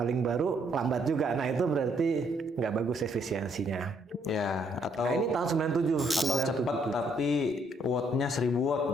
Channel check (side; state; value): both; normal; correlation 0.70